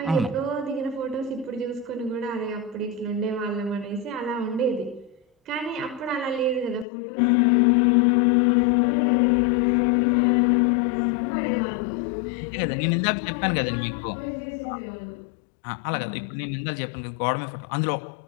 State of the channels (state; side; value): drops out; right; at 6.9 s